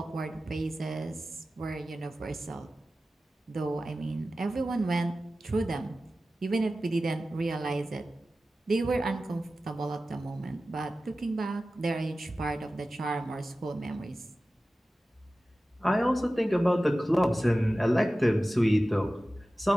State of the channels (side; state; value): both; normal; correlation 0.95